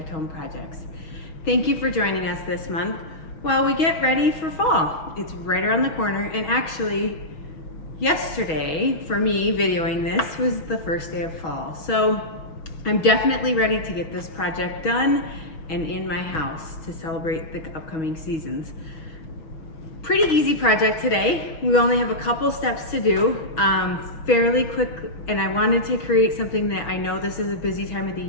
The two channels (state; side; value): late; right; 6.2 ms